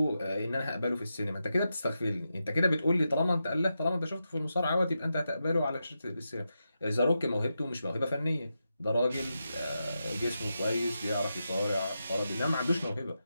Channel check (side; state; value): both; inverted; correlation -0.88